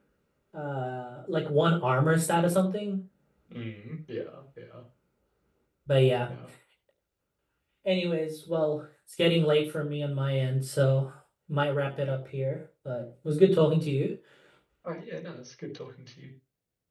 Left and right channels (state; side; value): identical; both; correlation 1.00